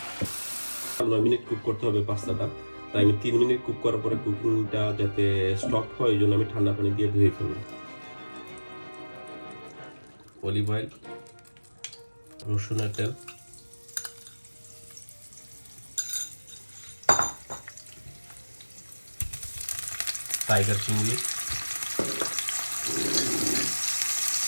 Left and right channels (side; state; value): both; inverted; correlation -1.00